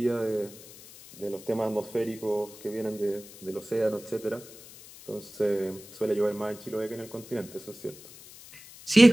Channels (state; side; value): noise; left; hiss, 19 dB below the sound